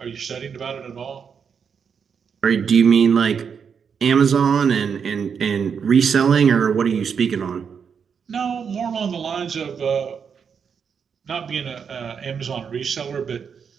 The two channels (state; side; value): quieter; left; 6.7 dB